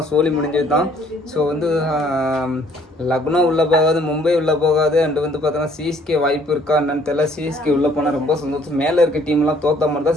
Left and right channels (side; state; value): both; normal; correlation 0.60